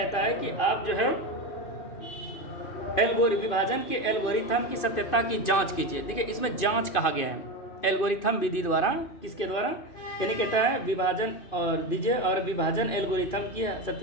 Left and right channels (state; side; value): late; right; 2.5 ms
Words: है कि आप जो है विभाजन के एल्गोरिथम की सत्यता की जांच कीजिए। देखिए इसमें जांच कहा गया है, एल्गोरिथम विधि द्वारा, किसके द्वारा, यानी कहता है विभाजन और दीजिए और विभाजन एल्गोरिथम की